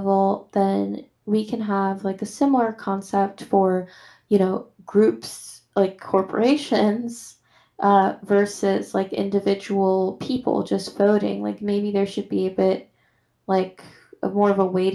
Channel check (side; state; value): both; identical; correlation 1.00